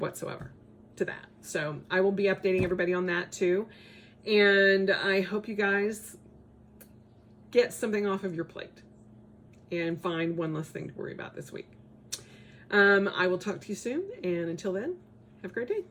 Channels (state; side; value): identical; both; correlation 1.00